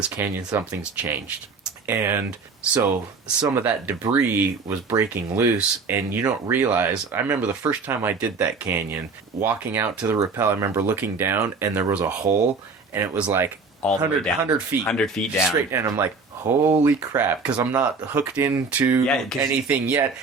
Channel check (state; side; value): quieter; left; 4.5 dB